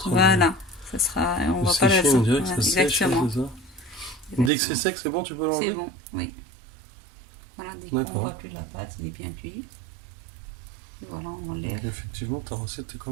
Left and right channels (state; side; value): drops out; left; at 4.5 s